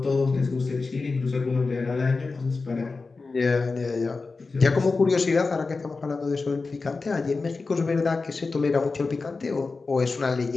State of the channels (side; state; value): right; quieter; 4.0 dB